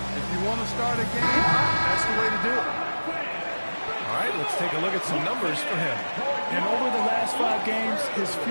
if you want to start a game, that's the way to do it. All right, let's take a look at some numbers for him. And over the last 5 games, his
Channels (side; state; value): both; inverted; correlation -1.00